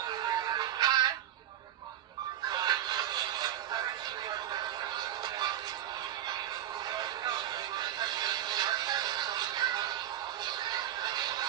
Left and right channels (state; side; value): quieter; left; 11.7 dB